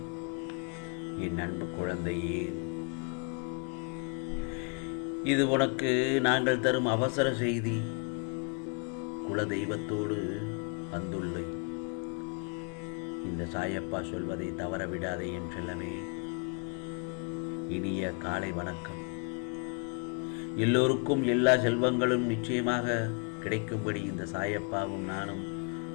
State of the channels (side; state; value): right; quieter; 35.1 dB